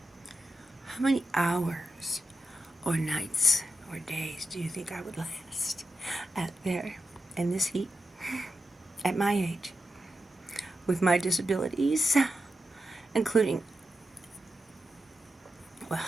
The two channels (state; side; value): normal; both; correlation 0.89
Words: How many hours or nights or days do you think I would last out there in this heat at my age with my disabilities, including, well,